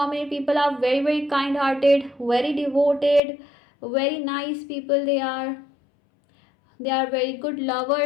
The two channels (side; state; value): right; drops out; at 3.2 s